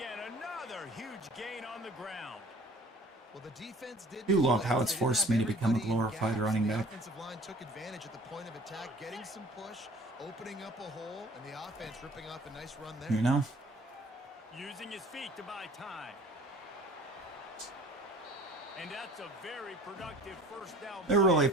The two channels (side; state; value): both; normal; correlation 0.49